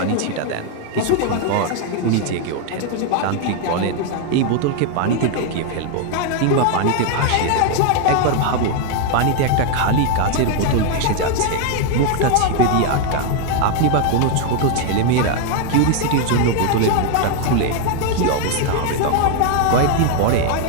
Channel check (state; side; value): different; both; correlation 0.01